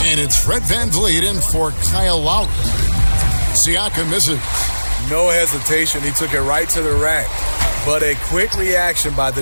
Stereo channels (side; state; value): both; inverted; correlation -1.00